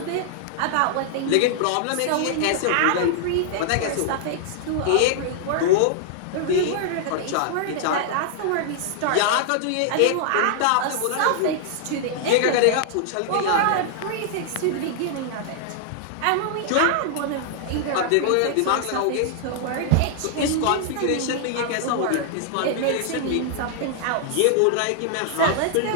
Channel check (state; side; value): different; both; correlation -0.01